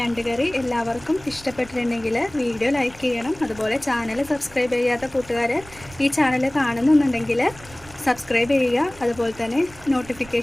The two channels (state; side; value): noise; right; rumble, 21 dB below the sound